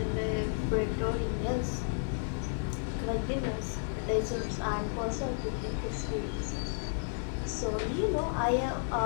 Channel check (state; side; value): silent; right; digital silence